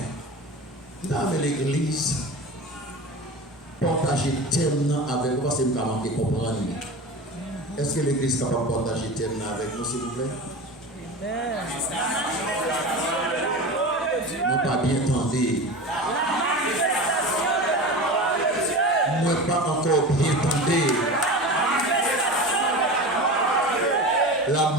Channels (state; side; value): normal; both; correlation 0.30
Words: Là, avec l'église, partager tellement avec vous, parce que nous avons comprendre. Est-ce que l'église est capable de partager tellement avec nous, s'il vous plaît? Nous pas bien entendu. Moi pas encore bien entendu. La